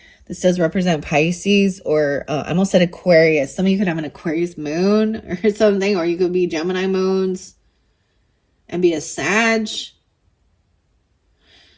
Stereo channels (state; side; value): identical; both; correlation 1.00